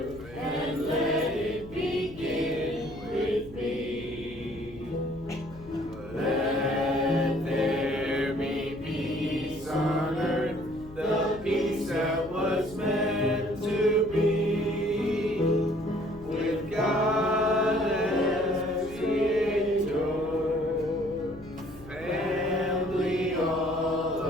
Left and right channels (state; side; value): noise; left; hum, 19 dB below the sound